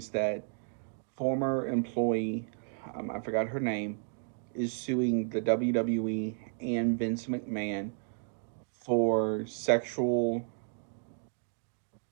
that former employee, I forgot her name, is suing the WWE and Vince McMahon for sexual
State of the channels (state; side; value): silent; left; 56 dB below the other